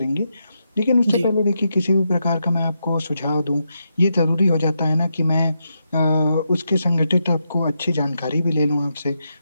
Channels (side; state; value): both; inverted; correlation -0.84